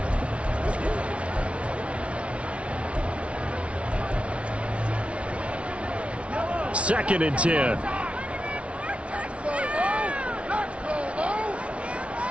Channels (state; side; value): late; left; 0.061 ms